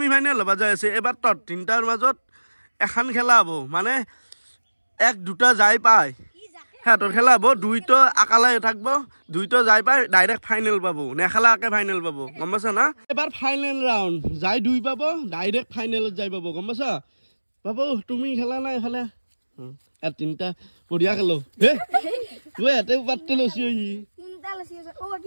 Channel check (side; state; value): both; inverted; correlation -1.00